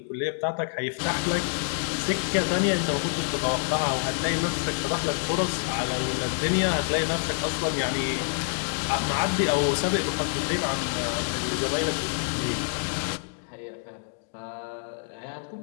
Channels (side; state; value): right; silent; digital silence